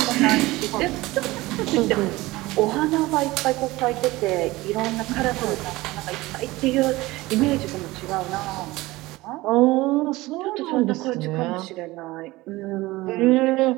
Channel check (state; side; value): quieter; left; 19.7 dB